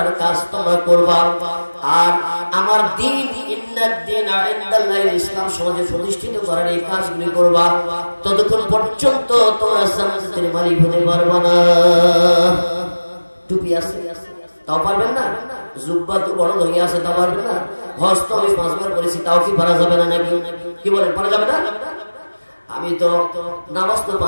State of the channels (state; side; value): inverted; both; correlation -1.00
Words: কাজ তোমরা করবা, আর আমার দ্বীন ইন্নাদ দীনা ইনদাল্লাহিল ইসলাম সমাজে প্রতিষ্ঠিত করার এই কাজগুলি করবা, ততক্ষণ পর্যন্ত তোমরা জান্নাতের মালিক হতে পারবে না। টুপি আছে তাও পারবেন না, জুব্বা তো বড় হয়ে আছে তাও পারবেন না, হজ তো আমি 5 বার করেছি তাও কি পারা যাবে না নাকি? কি বলেন, পারা যাবে না? আমি তো নামাজ তো